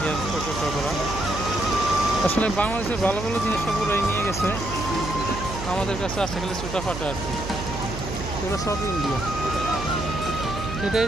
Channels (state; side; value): noise; right; hum, 8 dB below the sound